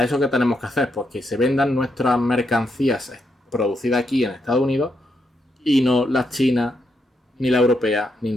eso qué tenemos que hacer? Pues que se vendan nuestras mercancías producidas aquí en Estados Unidos y no las chinas, ni la europea, ni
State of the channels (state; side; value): normal; both; correlation 0.80